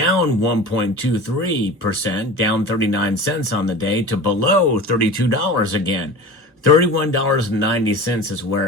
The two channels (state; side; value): normal; both; correlation 0.35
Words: 1.23%, down 39 cents on the day to below $32 again. $31.90 is